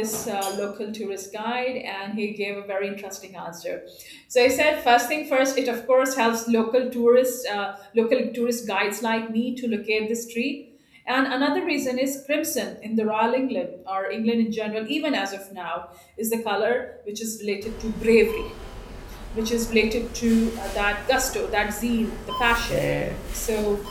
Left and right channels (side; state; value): both; identical; correlation 1.00